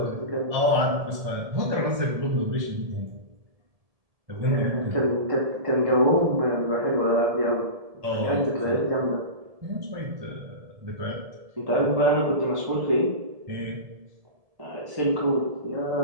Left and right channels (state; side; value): late; left; 1.7 ms